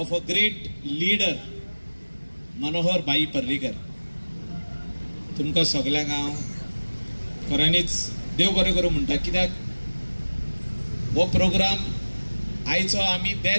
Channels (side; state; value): both; inverted; correlation -1.00